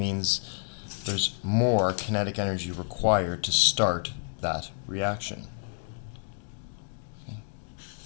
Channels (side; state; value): right; silent; digital silence